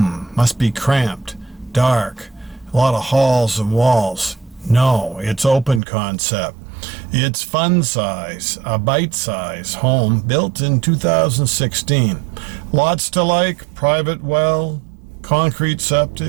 be cramped, dark, a lot of halls and walls. No, it's open concept. It's fun size, a bite-size home built in 2016. Lots to like, private well, concrete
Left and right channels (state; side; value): drops out; left; at 5.8 s